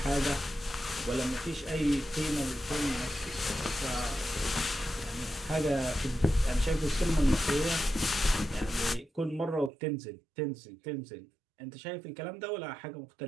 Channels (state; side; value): drops out; left; at 9.7 s